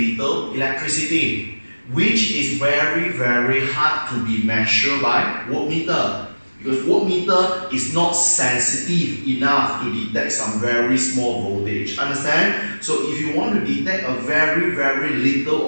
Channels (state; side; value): inverted; both; correlation -1.00